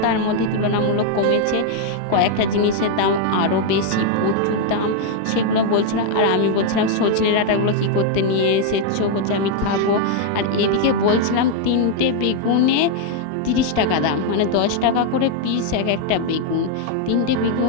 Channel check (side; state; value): both; different; correlation 0.00